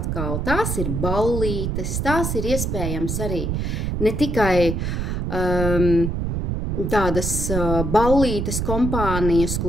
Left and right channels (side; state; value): right; noise; rumble, 1 dB below the sound